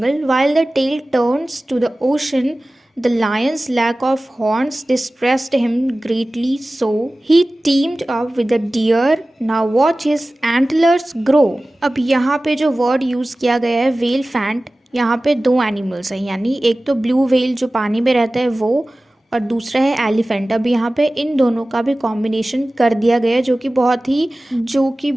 while the tail turns to the ocean, the lion's lack of horns distressed him greatly, so he teamed up with the deer, now watch his antlers grow. अब यहाँ पे जो word use किया गया है whale faint, यहाँ पे दो एनिमल्स हैं, यानी एक तो ब्लू व्हेल जो पानी में रहता है वो, और दूसरा है एलिफेंट। अब यहाँ पे इन दोनों का भी कॉम्बिनेशन कर दिया गया है, जो कि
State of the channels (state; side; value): normal; both; correlation 0.97